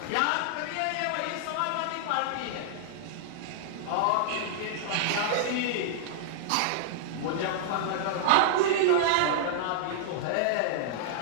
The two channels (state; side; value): different; both; correlation -0.01